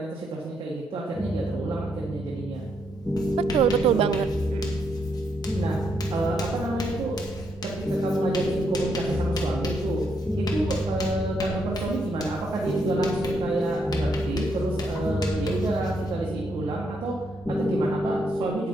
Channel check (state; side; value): normal; both; correlation 0.77